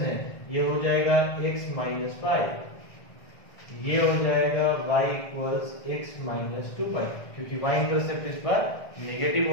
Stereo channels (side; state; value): right; late; 1.6 ms